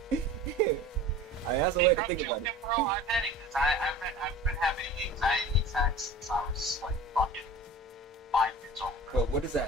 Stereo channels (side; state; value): both; normal; correlation 0.39